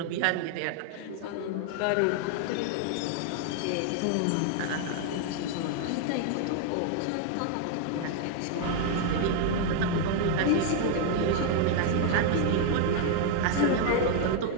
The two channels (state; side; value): different; both; correlation 0.00